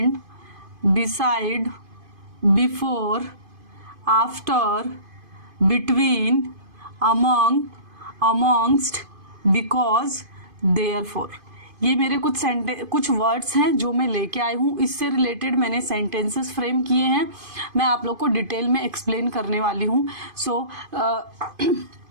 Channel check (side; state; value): left; late; 2.5 ms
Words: beside, before, after, between, among, amongst, because, therefore। ये मेरे कुछ वर्ड्स हैं जो मैं लेके आई हूँ। इससे रिलेटेड मैंने सेंटेंसेस फ्रेम किए हैं। मैं आप लोग को डिटेल में एक्सप्लेन करने वाली हूँ। सो